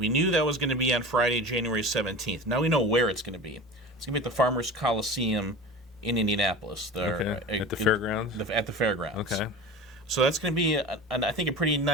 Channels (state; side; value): normal; both; correlation 0.33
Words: knew that was going to be on Friday, January 17th. Now we know where it's going to be. It's going to be at the Farmers Coliseum in Indianapolis. At the fairgrounds? At the fairgrounds. Okay. So that's going to be, I think, a pretty